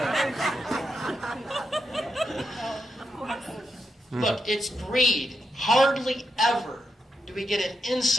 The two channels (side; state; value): both; normal; correlation 0.84